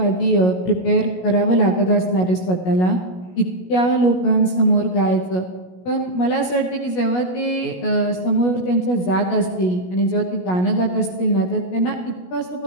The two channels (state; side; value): late; right; 16 ms